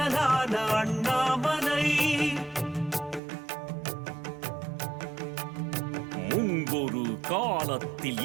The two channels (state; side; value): drops out; left; at 3.2 s